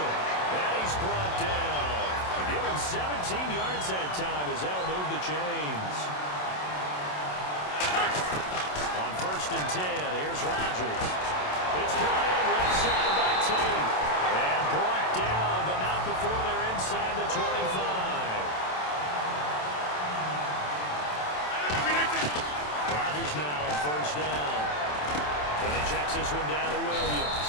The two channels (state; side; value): late; right; 27 ms